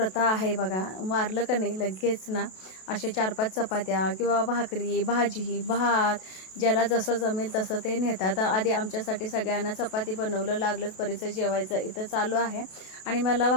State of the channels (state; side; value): late; right; 32 ms